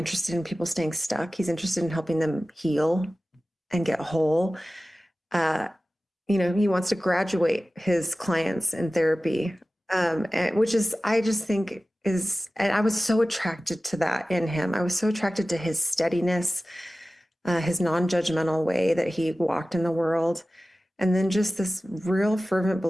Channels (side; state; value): both; normal; correlation 0.96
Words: in people staying stuck. He's interested in helping them heal and get whole. He wants to graduate his clients in therapy, which is, I just think and I was so attracted to that in him. I was so attracted to his steadiness, his non-judgmental way that he walked in the world. And then just this real fervent